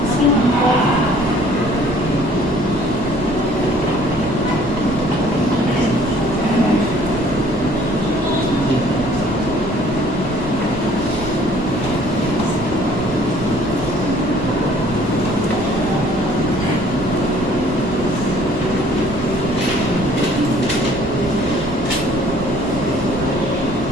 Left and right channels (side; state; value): right; noise; rumble, 12 dB below the sound